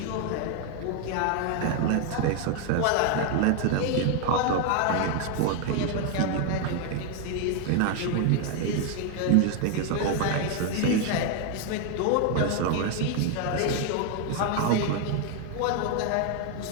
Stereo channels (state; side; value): different; both; correlation 0.01